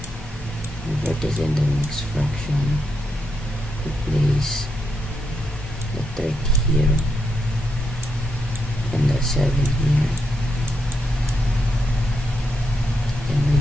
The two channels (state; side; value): normal; both; correlation 0.82